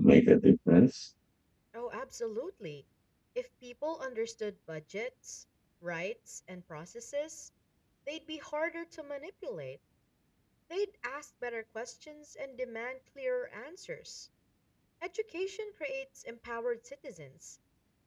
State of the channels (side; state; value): both; identical; correlation 1.00